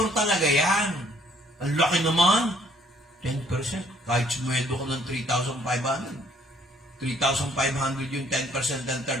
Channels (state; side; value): normal; both; correlation 0.63